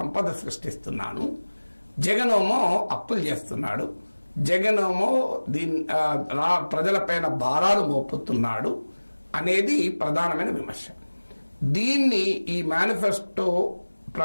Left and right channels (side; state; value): both; inverted; correlation -1.00